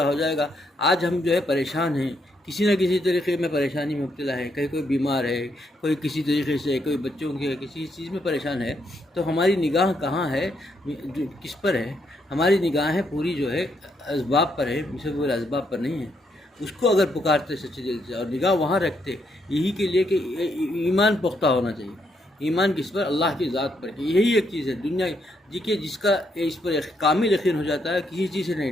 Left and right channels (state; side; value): normal; both; correlation 0.76